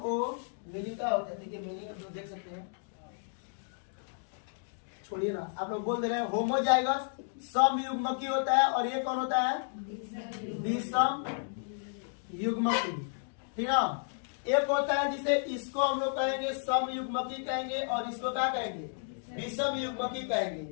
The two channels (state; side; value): silent; right; digital silence